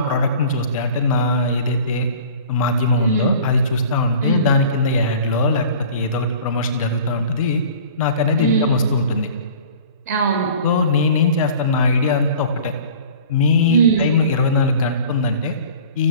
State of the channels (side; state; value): both; inverted; correlation -0.44